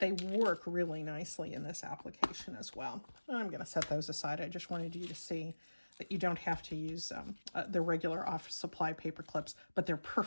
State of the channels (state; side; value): inverted; both; correlation -1.00